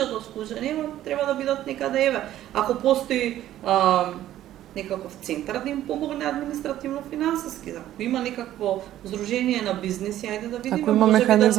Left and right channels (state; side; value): quieter; left; 12.9 dB